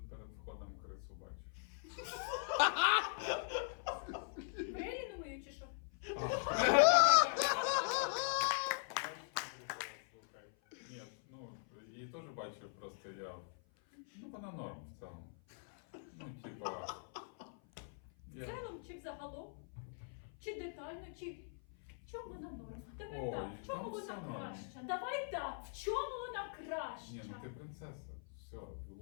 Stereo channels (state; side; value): silent; right; 50 dB below the other